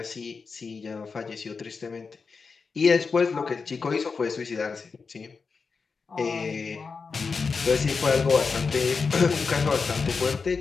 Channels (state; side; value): quieter; right; 4.9 dB